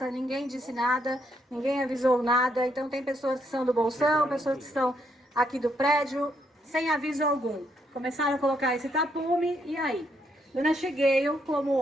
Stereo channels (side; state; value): both; normal; correlation 0.75